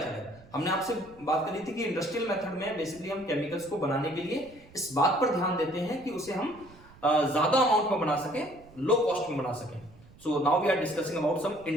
है, हमने आपसे बात करी थी कि इंडस्ट्रियल मेथड में बेसिकली हम केमिकल्स को बनाने के लिए इस बात पर ध्यान देते हैं कि उसे हम ज्यादा अमाउंट में बना सकें, लो कॉस्ट में बना सकें। So now we are discussing about some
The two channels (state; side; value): noise; right; rumble, 23 dB below the sound